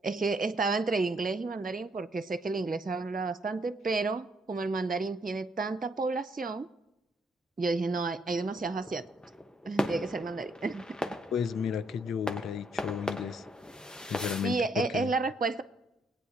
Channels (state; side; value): normal; both; correlation 0.71